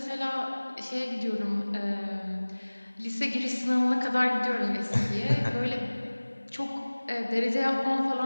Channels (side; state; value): both; inverted; correlation -1.00